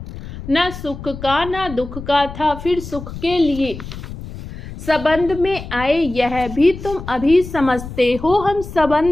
न सुख का न दुख का था, फिर सुख के लिए संबंध में आए, यह भी तुम अभी समझते हो। हम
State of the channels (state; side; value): noise; left; rumble, 11 dB below the sound